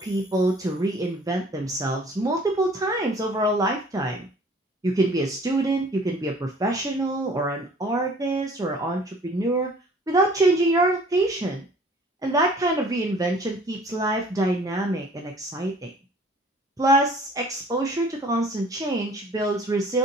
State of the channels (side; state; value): both; normal; correlation 0.52